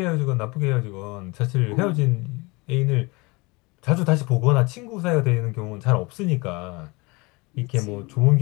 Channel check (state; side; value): quieter; right; 25.7 dB